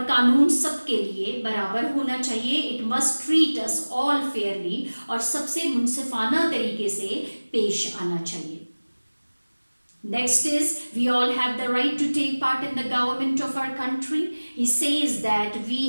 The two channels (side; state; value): both; inverted; correlation -1.00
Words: कानून सबके लिए बराबर होना चाहिए. It must treat us all fairly. और सबसे मुनसिफाना तरीके से पेश आना चाहिए. Next is, we all have the right to take part in the government of our country. He says that